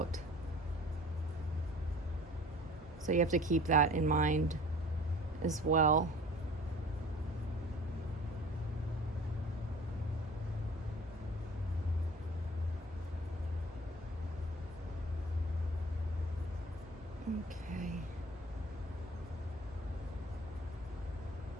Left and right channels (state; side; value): normal; both; correlation 0.45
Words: So you have to keep that in mind as well. Okay.